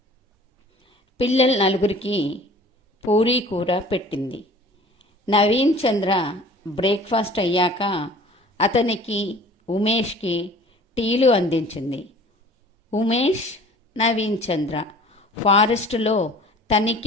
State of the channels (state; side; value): normal; both; correlation 0.47